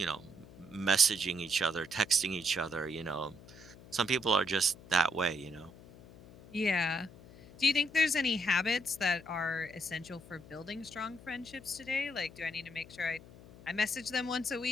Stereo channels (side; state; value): left; noise; hum, 20 dB below the sound